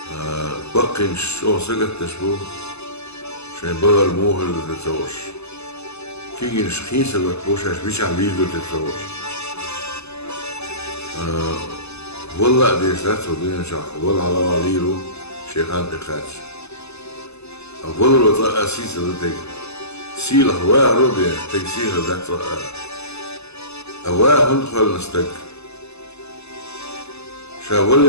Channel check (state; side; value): late; right; 0.80 ms